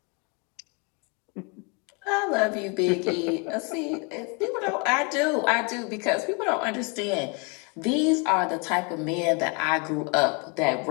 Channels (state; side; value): quieter; right; 32.7 dB